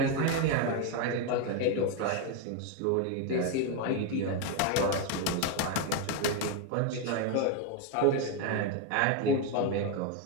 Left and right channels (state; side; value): different; both; correlation 0.02